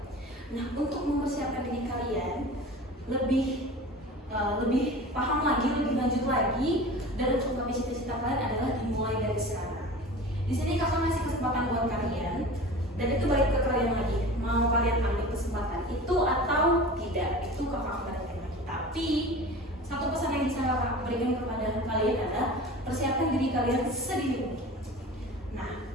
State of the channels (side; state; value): both; normal; correlation 0.37